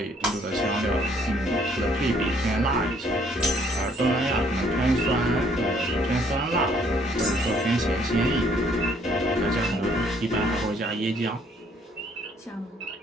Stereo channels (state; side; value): normal; both; correlation 0.64